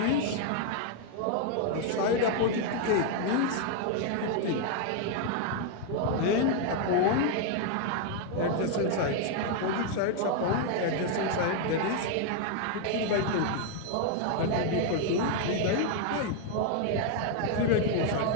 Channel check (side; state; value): both; different; correlation 0.00